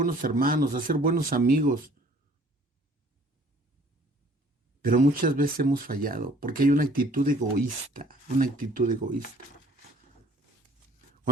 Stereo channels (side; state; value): both; normal; correlation 0.56